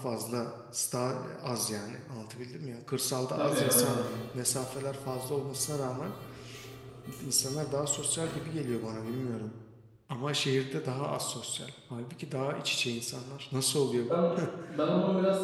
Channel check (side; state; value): both; identical; correlation 1.00